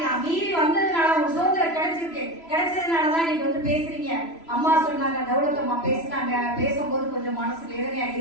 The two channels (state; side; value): late; right; 3.0 ms